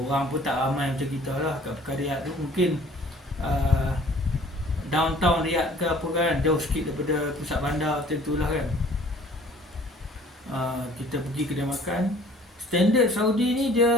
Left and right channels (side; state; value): both; normal; correlation 0.53